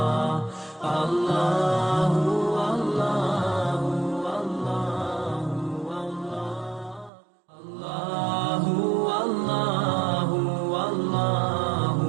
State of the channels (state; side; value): drops out; left; at 7.1 s